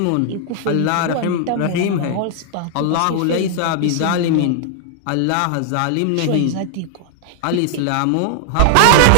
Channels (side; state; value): both; different; correlation -0.01